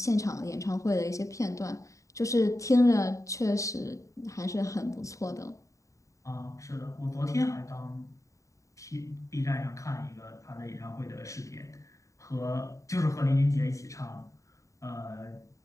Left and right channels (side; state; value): right; late; 0.16 ms